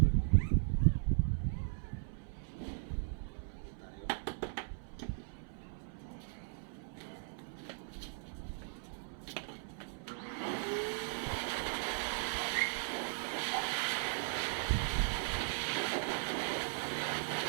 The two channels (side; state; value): left; silent; 52 dB below the other